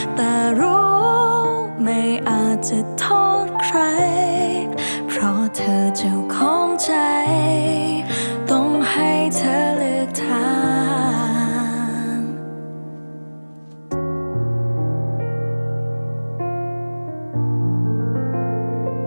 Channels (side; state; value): both; inverted; correlation -1.00